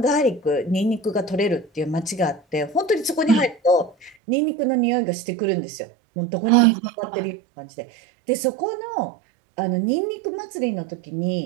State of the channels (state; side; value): drops out; left; at 4.2 s